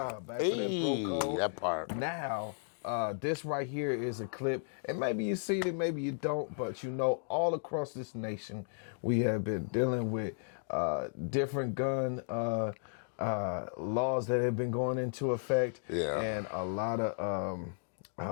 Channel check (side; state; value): right; silent; digital silence